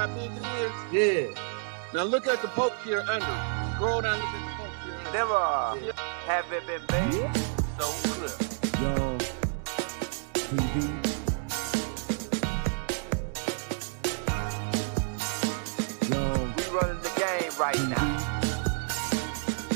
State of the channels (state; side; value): silent; left; digital silence